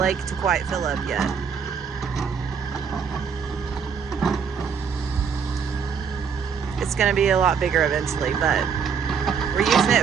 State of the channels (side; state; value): left; quieter; 6.5 dB